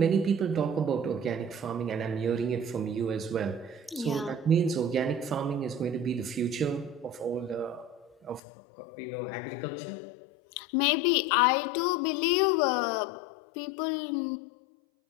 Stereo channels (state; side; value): drops out; right; at 8.4 s